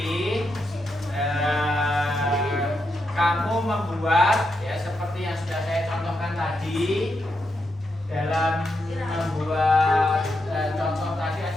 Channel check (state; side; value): normal; both; correlation 0.83